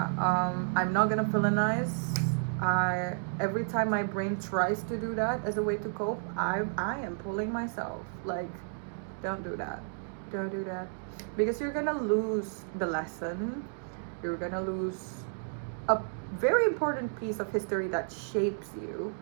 I'm not gonna villainize. Every time my brain tries to do that as a way to cope, I am pulling myself, like, don't do that, don't do that, because you're gonna lose the lesson. You're gonna lose a very important piece of history that shapes you.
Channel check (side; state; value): left; silent; digital silence